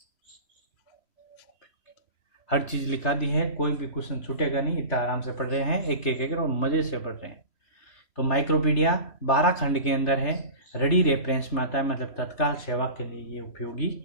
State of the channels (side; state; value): right; late; 3.1 ms